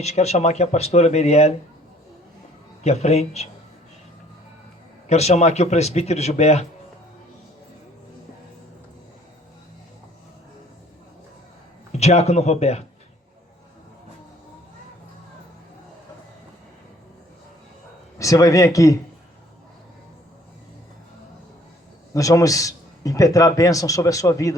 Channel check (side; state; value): both; normal; correlation 0.58